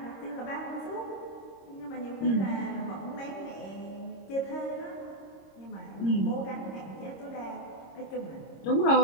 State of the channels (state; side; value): late; right; 26 ms